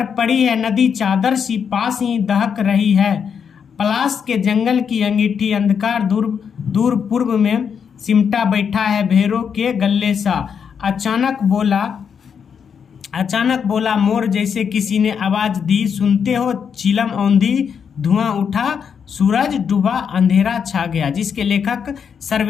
पड़ी है नदी चादर सी पास ही दहक रही है, पलाश के जंगल की अंगीठी अंधकार दूर दूर पूर्व में सिमटा बैठा है भेरों के गले सा, अचानक बोला मोर जैसे किसी ने आवाज दी, सुनते हो चिलम औंधी धुआं उठा, सूरज डूबा अंधेरा छा गया, जिसके लेखक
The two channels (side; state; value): right; quieter; 7.0 dB